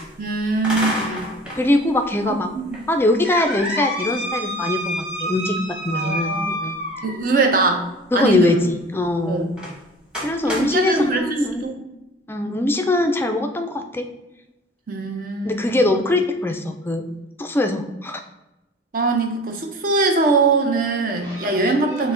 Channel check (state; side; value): normal; both; correlation 0.44